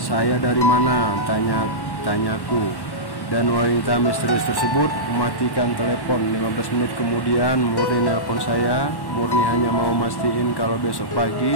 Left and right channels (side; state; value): right; late; 1.1 ms